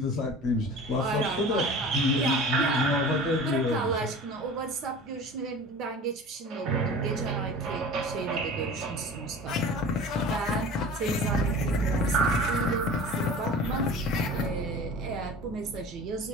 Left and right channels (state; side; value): normal; both; correlation 0.39